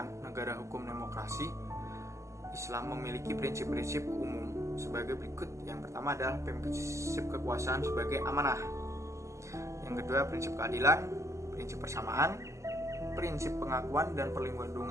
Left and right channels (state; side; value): late; left; 0.14 ms